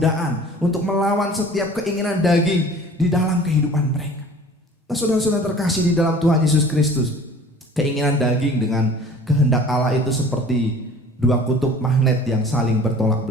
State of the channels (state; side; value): normal; both; correlation 0.46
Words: untuk melawan setiap keinginan daging di dalam kehidupan mereka. Nah, saudara-saudara terkasih di dalam Tuhan Yesus Kristus, keinginan daging dengan kehendak Allah itu seperti dua kutub magnet yang saling bertolak